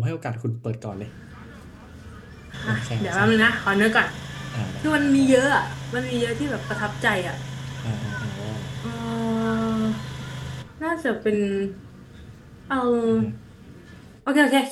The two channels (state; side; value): identical; both; correlation 1.00